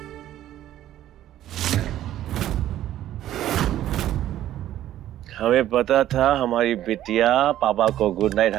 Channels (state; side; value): quieter; left; 12.7 dB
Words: हमें पता था हमारी बिटिया पापा को गुड नाइट